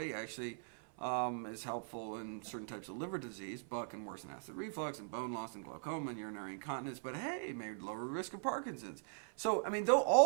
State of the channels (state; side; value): silent; left; 51 dB below the other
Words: actually is helpful in certain types of liver disease, but can worsen acid reflux and bone loss and glaucoma and urinary incontinence. But hey, may lower risk of Parkinson's. So I mean, though